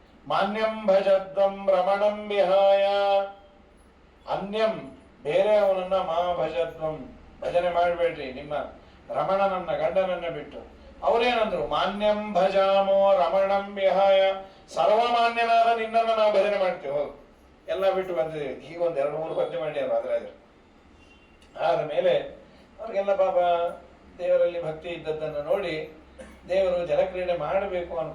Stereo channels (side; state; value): both; identical; correlation 1.00